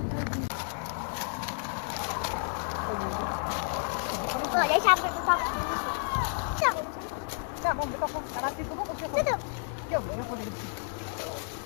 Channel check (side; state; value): right; silent; 57 dB below the other